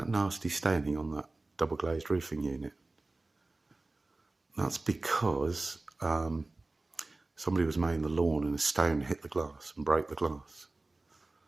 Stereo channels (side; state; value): left; quieter; 3.1 dB